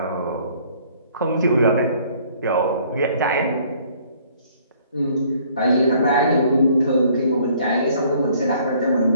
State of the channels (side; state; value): both; inverted; correlation -0.59